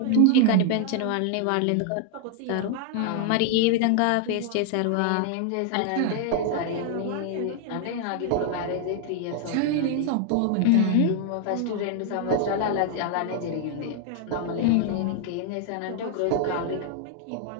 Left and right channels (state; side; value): different; both; correlation 0.00